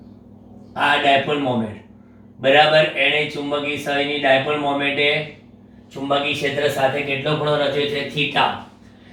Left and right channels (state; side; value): identical; both; correlation 1.00